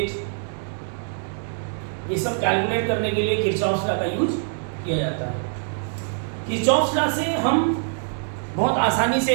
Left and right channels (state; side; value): silent; left; digital silence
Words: ये सब कैलकुलेट करने के लिए किरचॉफ्स लॉ का यूज किया जाता है। किरचॉफ्स लॉ से हम बहुत आसानी